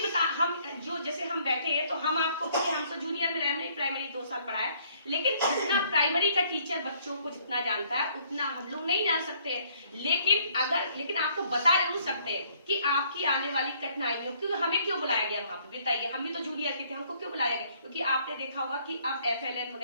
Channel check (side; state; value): both; inverted; correlation -0.63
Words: बता, हम जो जैसे हम बैठे हैं तो हम आपको, हम तो जूनियर में रहने प्राइमरी 2 साल पढ़ाया, लेकिन जितना प्राइमरी का टीचर बच्चों को जितना जानता है उतना हम लोग नहीं जान सकते हैं। लेकिन आपको बता जरूर सकते हैं कि आपकी आने वाली कठिनाइयों, क्योंकि हमें क्यों बुलाया गया वहां पे बताइए, हम भी तो जूनियर के थे, हमको क्यों बुलाया गया? क्योंकि आपने देखा होगा कि अब FLN